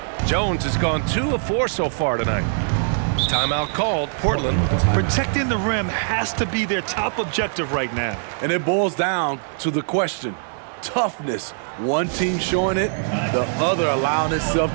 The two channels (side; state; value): left; silent; digital silence